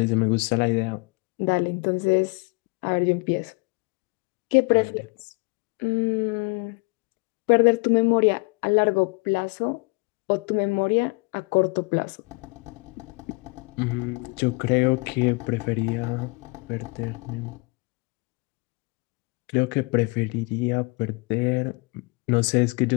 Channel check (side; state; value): right; quieter; 28.7 dB